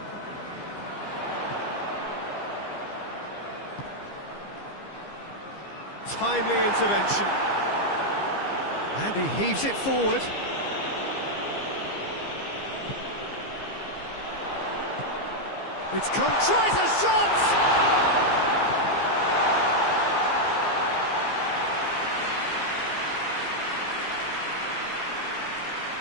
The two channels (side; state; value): right; late; 15 ms